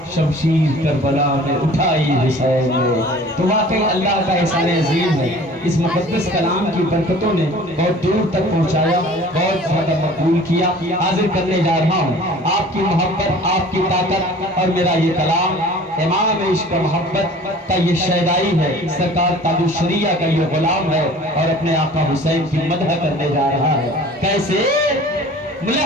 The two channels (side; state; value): both; normal; correlation 0.46